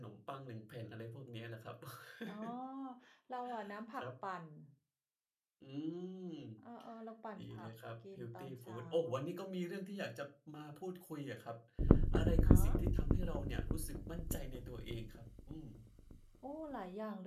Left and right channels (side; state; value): both; identical; correlation 1.00